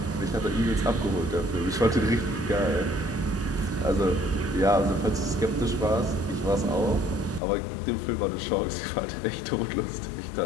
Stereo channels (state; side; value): drops out; right; at 7.4 s